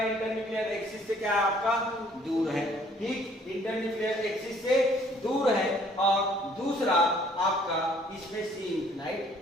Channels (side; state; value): both; normal; correlation 0.60